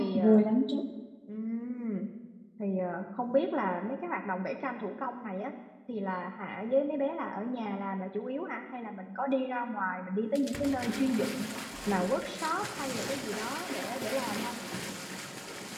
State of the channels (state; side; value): identical; both; correlation 1.00